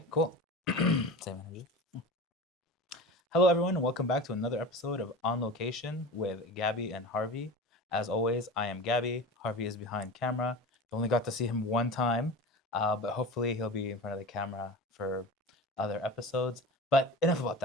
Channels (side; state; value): both; normal; correlation 0.32